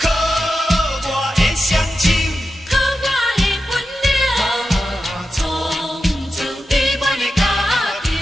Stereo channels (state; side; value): normal; both; correlation 0.91